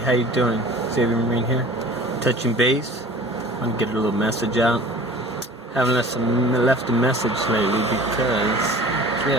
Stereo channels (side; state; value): both; normal; correlation 0.44